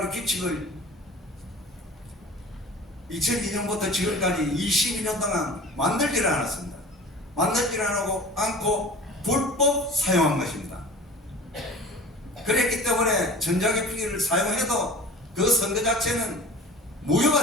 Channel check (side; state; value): both; normal; correlation 0.40